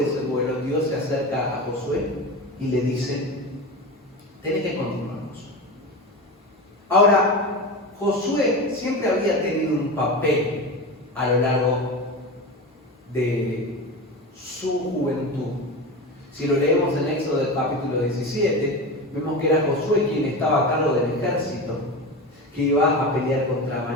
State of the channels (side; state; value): both; normal; correlation 0.26